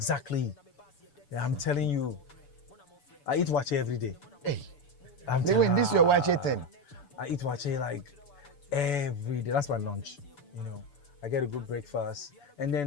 Yeah, I'm telling you. I eat wache every day. Hey, Lil Wayne, this is your wache thing. I eat wache like every day. That's my lunch. You know, I get a good breakfast, and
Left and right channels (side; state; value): right; late; 6.9 ms